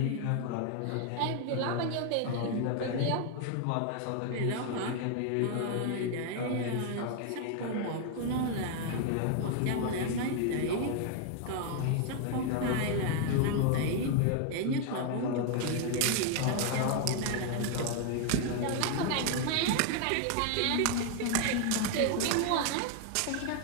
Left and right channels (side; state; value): both; different; correlation 0.00